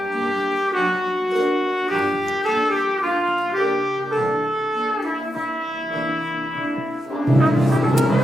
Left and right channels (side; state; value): both; normal; correlation 0.86